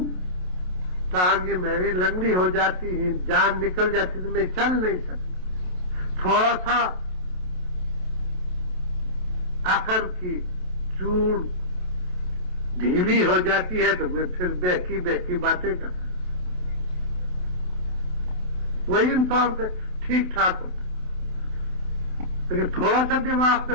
ٹانگیں میری لنگڑی ہو جاتی ہیں، جان نکل جاتی تو میں چل نہیں سکتا، تھوڑا سا عقل کی چوڑ ڈھیلی ہو جاتی ہے تو میں پھر بہکی بہکی باتیں کرتا، وہی انسان سے ٹھیک ٹھاک ہوتا، لیکن تھوڑا سا دماغ پہ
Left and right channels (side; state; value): left; late; 27 ms